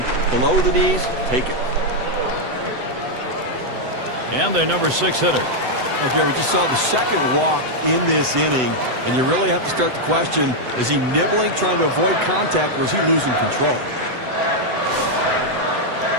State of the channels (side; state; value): left; late; 7.9 ms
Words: below the knees, take it. And their number 6 hitter. Now, Gary, we just saw the second walk in this inning, and you really have to start to question, is he nibbling, trying to avoid contact, or is he losing control?